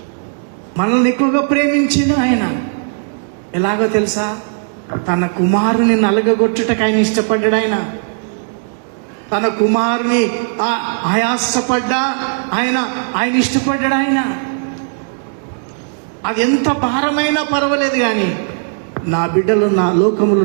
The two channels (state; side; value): silent; left; digital silence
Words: మనల్ని ఎక్కువగా ప్రేమించింది ఆయన. ఎలాగో తెలుసా? తన కుమారుని నలగగొట్టుటకు ఆయన ఇష్టపడ్డాడు. తన కుమారుని ఆయాసపడ్డా ఆయన ఇష్టపడ్డాడు. అది ఎంత భారమైనా పర్వాలేదు, కానీ నా బిడ్డలు, నా లోకములు